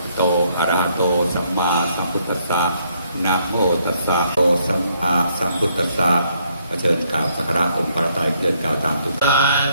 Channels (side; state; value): both; inverted; correlation -0.71